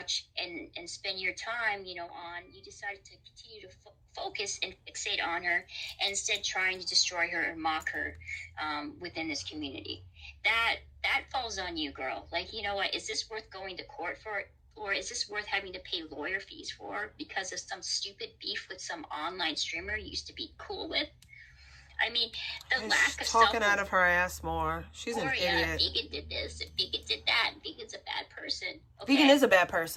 and spend your time, you know, on, you decided to continue to focus and fixate on her and instead trying to destroy her and mock her within this community. That falls on you, girl. Like, you know what, is this worth going to court for? Or is this worth having to pay lawyer fees for because of some stupid beef with some online streamer you used to be cool with? I mean, the lack of talking out of her ass more. She's an idiot. Vegan did this, and Vegan did that, and Vegan's a bad person. Okay? Vegan is a bad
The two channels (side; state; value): both; identical; correlation 1.00